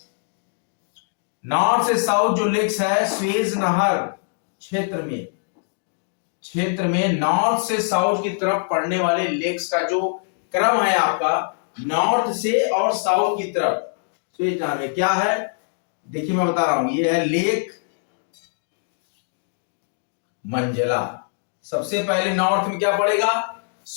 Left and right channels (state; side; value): silent; right; digital silence